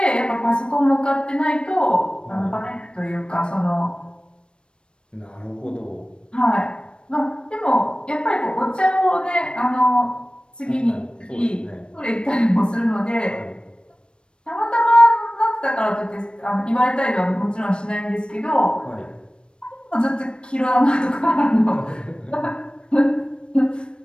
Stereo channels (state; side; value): late; right; 0.055 ms